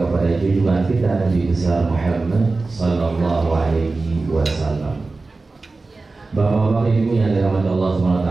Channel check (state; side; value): quieter; left; 3.6 dB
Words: junjungan kita Nabi besar Muhammad sallallahu alaihi wasallam. Bapak-bapak ibu yang dirahmati Allah SWT,